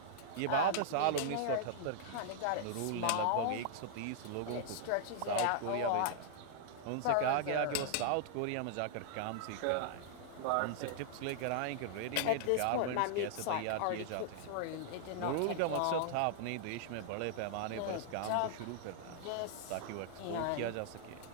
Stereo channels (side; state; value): both; different; correlation -0.01